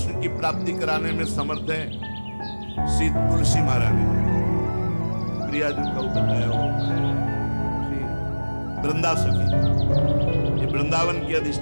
की प्राप्ति कराने में समर्थ है श्री तुलसी महारानी। प्रियाजू का बताया वृंदा सखी, ये वृंदावन की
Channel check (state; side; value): inverted; both; correlation -1.00